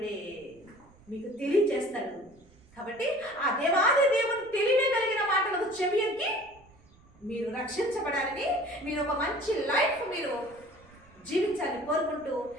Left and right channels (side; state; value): right; noise; rumble, 27 dB below the sound